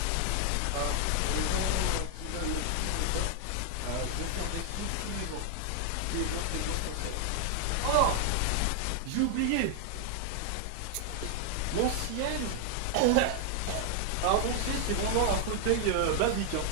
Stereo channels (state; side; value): different; both; correlation 0.00